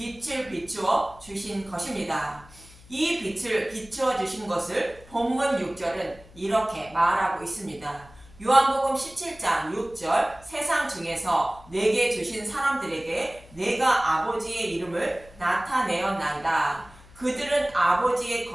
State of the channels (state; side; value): noise; left; hum, 23 dB below the sound